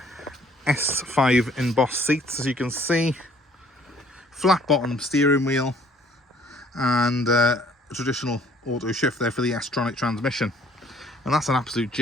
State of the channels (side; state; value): both; normal; correlation 0.59